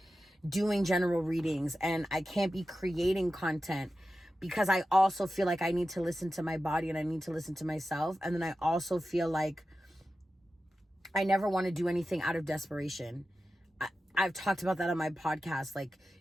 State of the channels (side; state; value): both; normal; correlation 0.93